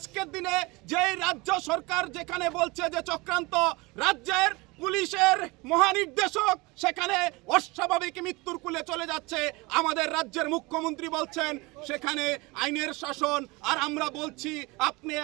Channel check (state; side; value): quieter; left; 24.4 dB